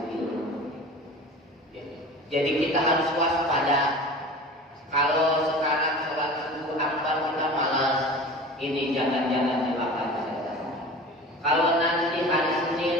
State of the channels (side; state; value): both; normal; correlation 0.37